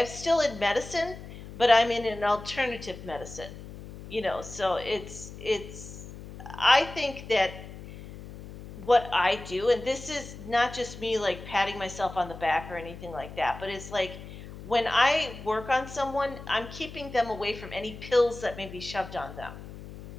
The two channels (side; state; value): left; noise; hum, 14 dB below the sound